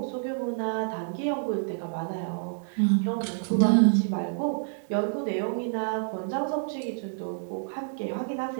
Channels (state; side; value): silent; left; digital silence